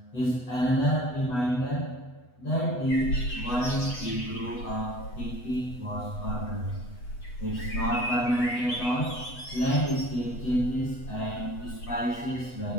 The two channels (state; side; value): late; right; 8.1 ms